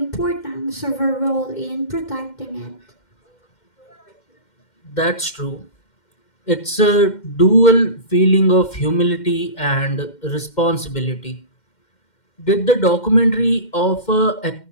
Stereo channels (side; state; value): right; late; 2.1 ms